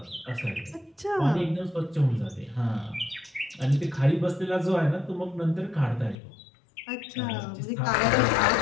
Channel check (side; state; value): right; drops out; at 6.2 s